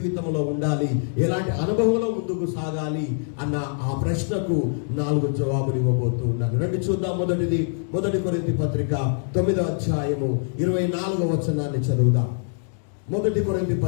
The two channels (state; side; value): silent; right; digital silence